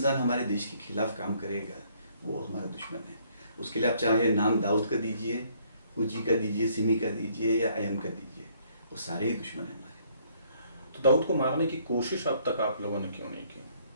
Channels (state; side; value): inverted; both; correlation -0.65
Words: हमारे देश के खिलाफ काम करेगा वो हमारा दुश्मन है। उसके लिए आप चाहे नाम दाऊद का दीजिए, फूजी का दीजिए, सिमी का दीजिए या अयम का दीजिए, वो सारे ही दुश्मन है हमारे। तो दाऊद को मारने की कोशिश अब तक आप लोगों ने क्यों नहीं की?